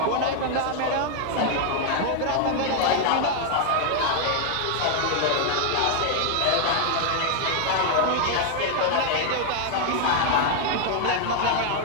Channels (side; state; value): both; different; correlation 0.00